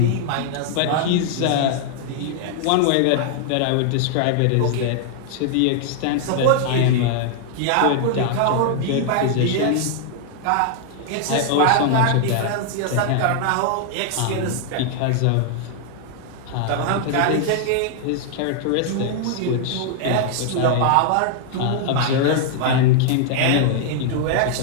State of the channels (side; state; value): both; different; correlation 0.00